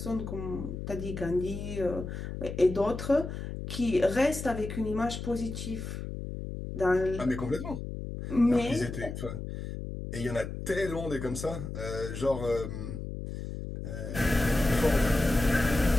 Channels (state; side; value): noise; left; hum, 7 dB below the sound